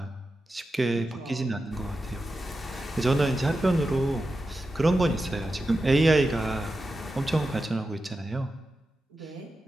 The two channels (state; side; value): normal; both; correlation 0.91